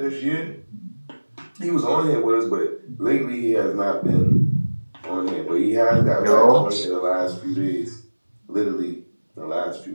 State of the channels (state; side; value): inverted; both; correlation -1.00